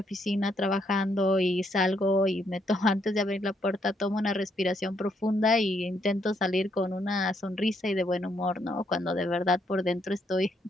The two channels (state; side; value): normal; both; correlation 0.74